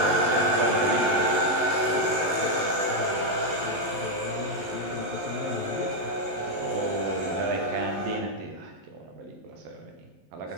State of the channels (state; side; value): late; left; 11 ms